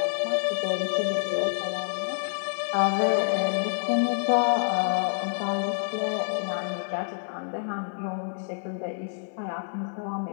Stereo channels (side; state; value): right; silent; digital silence